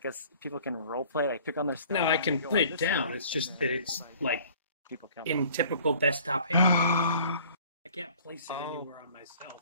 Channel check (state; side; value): inverted; both; correlation -0.52